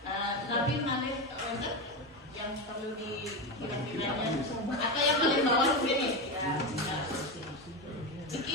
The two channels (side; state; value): both; normal; correlation 0.16